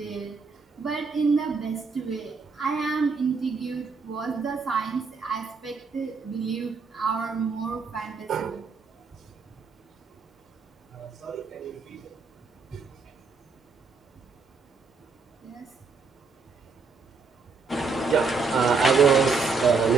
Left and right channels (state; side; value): quieter; left; 4.6 dB